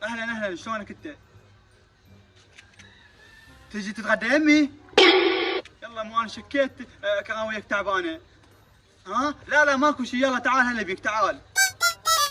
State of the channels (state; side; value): identical; both; correlation 1.00